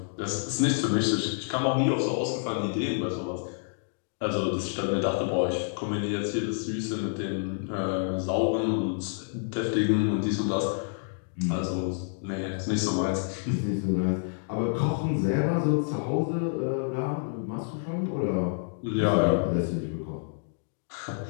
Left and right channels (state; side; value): silent; right; digital silence